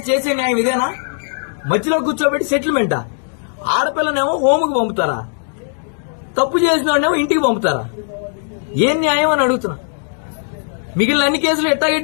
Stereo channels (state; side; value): silent; right; digital silence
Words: చేసే న్యాయం ఇదేనా? మధ్యలో కూర్చోబెట్టి సెటిల్మెంటా? ఆడపిల్లనేమో హోముకు పంపుతారా, తప్పు చేసిన వాడినేమో ఇంటికి పంపుతారా? ఏం న్యాయం అని అడుగుతున్నా. మిగిలిన అన్ని కేసులు ఎట్టాగే